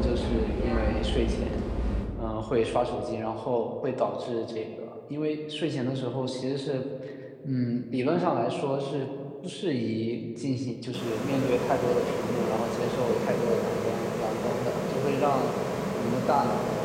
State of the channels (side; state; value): both; identical; correlation 1.00